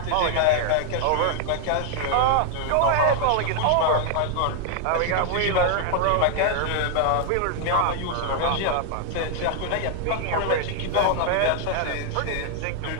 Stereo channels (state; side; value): different; both; correlation 0.00